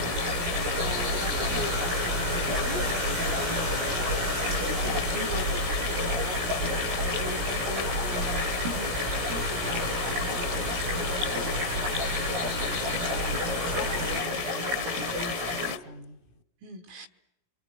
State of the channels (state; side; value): late; left; 17 ms